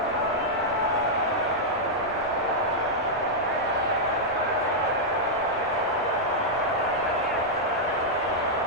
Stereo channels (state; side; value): normal; both; correlation -0.06